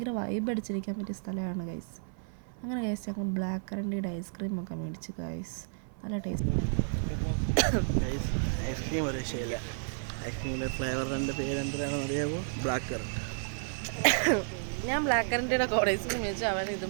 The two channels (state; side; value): silent; left; 56 dB below the other